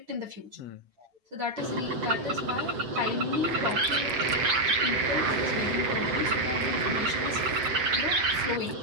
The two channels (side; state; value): left; late; 8.1 ms